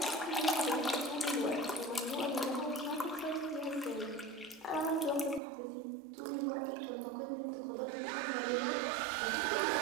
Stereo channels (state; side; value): drops out; left; at 5.4 s